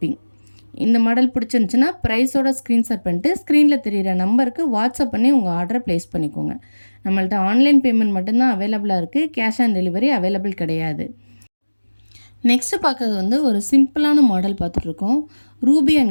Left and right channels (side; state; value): both; inverted; correlation -1.00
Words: இந்த மாடல் பிடிச்சிருந்துச்சின்னா ப்ரைஸோட ஸ்க்ரீன்ஷாட் பண்ணிட்டு ஸ்க்ரீனில் தெரிகிற நம்பருக்கு வாட்ஸ்அப் பண்ணி உங்கள் ஆர்டரை ப்ளேஸ் பண்ணிக்கோங்க. நம்மள்ட்ட ஆன்லைன் பேமெண்ட் மட்டும்தான் அவைலபிளாக இருக்குது. கேஷ் ஆன் டெலிவரி அவைலபிள் கிடையாது. நெக்ஸ்ட்டு பார்க்குறது ஒரு சிம்பிளான மாடல் பார்த்துட்ருக்கோம். Ruby